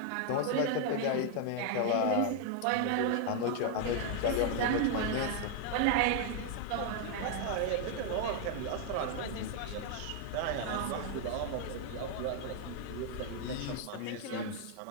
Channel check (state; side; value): different; both; correlation 0.00